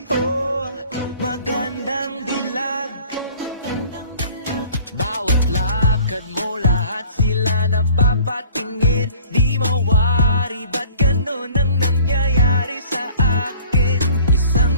Oh, magandang dilag. Bawat lakad mo, lahat sila napapatingin. Di mawari, ba't ganun ang nangyayari sa akin?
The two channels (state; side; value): inverted; both; correlation -0.50